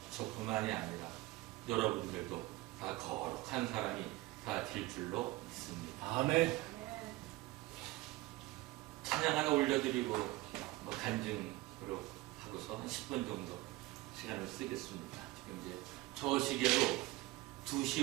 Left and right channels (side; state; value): left; quieter; 19.2 dB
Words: 저뿐만이 아니라 여러분들도 다 거룩한 사람이 다 될 줄로 믿습니다. 아멘! 찬양 하나 올려드리고 간증으로 하고서 한 10분 정도 시간을 쓰겠습니다. 지금 이제 저 시계로